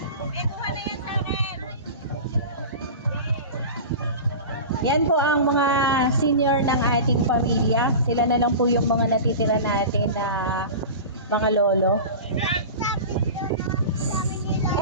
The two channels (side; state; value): both; inverted; correlation -0.31